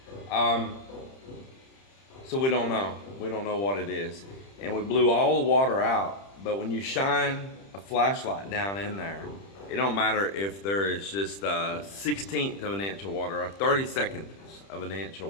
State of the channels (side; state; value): right; late; 30 ms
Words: So we don't know what it is, and we blew all the water out. But when you shine a flashlight down in there, it don't matter if there is just a 1/16 of an inch of water, or 32nd of an inch